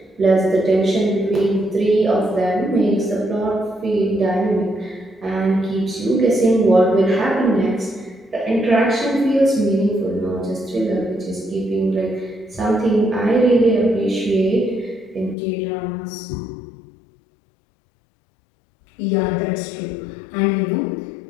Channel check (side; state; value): right; drops out; at 15.4 s